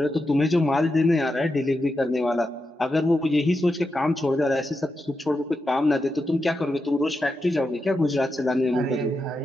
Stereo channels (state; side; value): normal; both; correlation 0.87